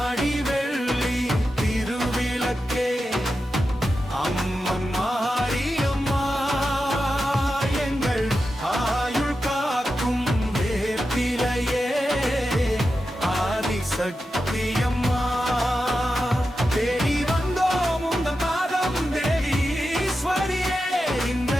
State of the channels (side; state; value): both; normal; correlation 0.90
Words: ஆடி வெள்ளி திருவிளக்கே அம்மன் மாரியம்மா எங்கள் ஆயுள் காக்கும் வேப்பிலையே ஆதிசக்தியம்மா தேடி வந்தோம் உந்தன் பாதம் தேவி ஈஸ்வரியே இந்த